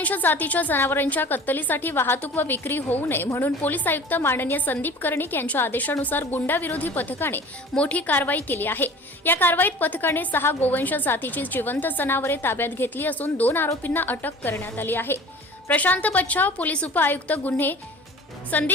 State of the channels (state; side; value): normal; both; correlation 0.42